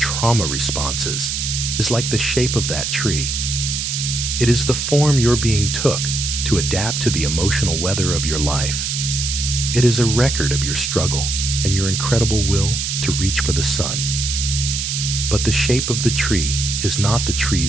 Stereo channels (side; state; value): right; noise; hiss, 2 dB below the sound